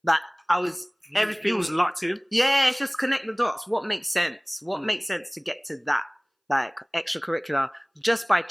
That I was everything. It was locked in. Yeah, it's just connect the dots. What makes sense? What makes sense to get to that? Like extracurricular. Just by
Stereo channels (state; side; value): identical; both; correlation 1.00